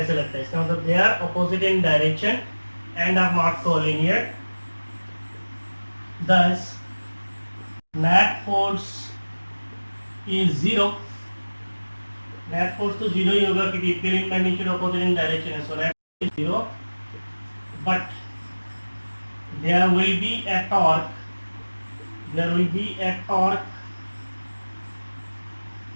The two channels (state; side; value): inverted; both; correlation -1.00